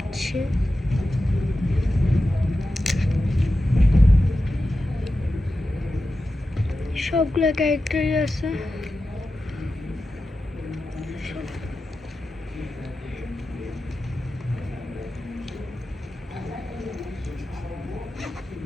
সবগুলো ক্যারেক্টারই আছে।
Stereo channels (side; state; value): both; normal; correlation 0.92